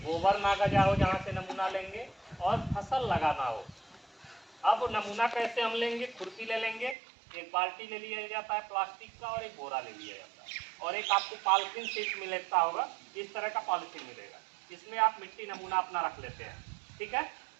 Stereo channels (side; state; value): left; drops out; at 7.0 s